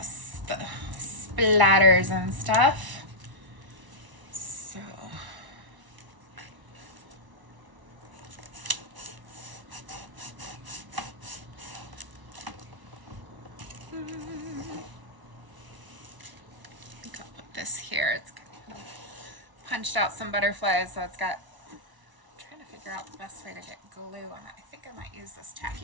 the splatters and stuff. So this here, it's punched out some butterflies, so it's got, I'm trying to figure out the best way to get glue on it. I think I might use this tacky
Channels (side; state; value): left; late; 1.0 ms